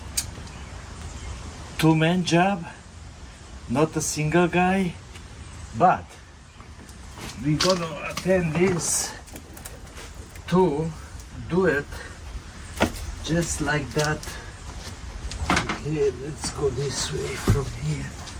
two-man job, not a single guy, but we're gonna attend this to do it just like that. Okay, let's go this way from here.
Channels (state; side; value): identical; both; correlation 1.00